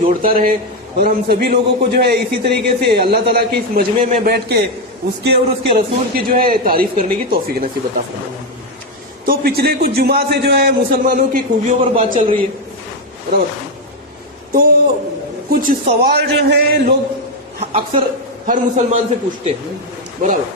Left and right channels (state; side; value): normal; both; correlation 0.06